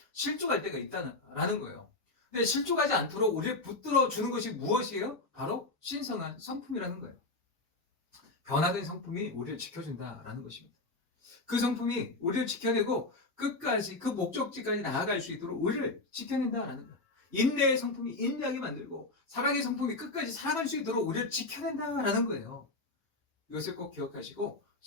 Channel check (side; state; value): right; quieter; 3.2 dB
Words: 실족할 때가 있다는 거예요. 근데 실족하지 않도록 우리를 붙들어 주는 것이 무엇이에요? 바로 신성한 성품이라는 거예요. 변화된 성품이 우리를 지켜준다라는 것입니다. 그 성품이 우리를 지켜내고 끝까지 그 목적지까지 나아갈 수 있도록 우리를 지켜낸다라는 거예요. 인내의 성품이 인내하게 만들고 사랑의 성품이 끝까지 살아갈 수 있도록 우리를 지켜낸다라는 거예요. 이것을 꼭 기억하시고